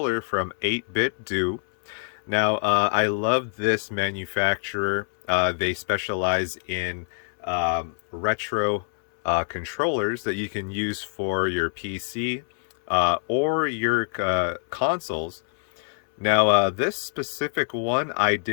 from 8BitDo. Now, I love this manufacturer. They specialize in retro controllers that you can use for your PC or your consoles. Now, this specific one I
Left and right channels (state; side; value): silent; right; 62 dB below the other